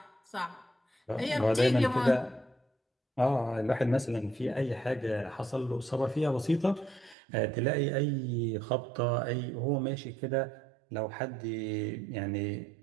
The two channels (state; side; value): drops out; left; at 7.2 s